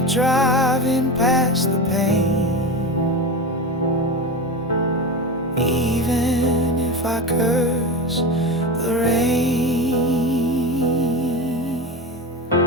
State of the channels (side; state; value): both; normal; correlation 0.22